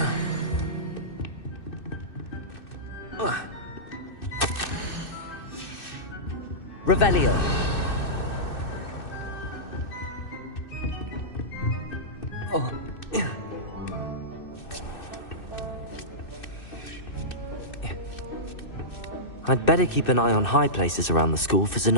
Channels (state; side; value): late; right; 2.6 ms